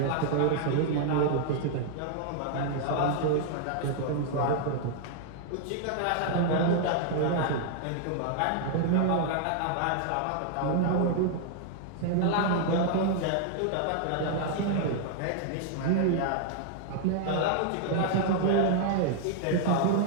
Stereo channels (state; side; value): different; both; correlation 0.00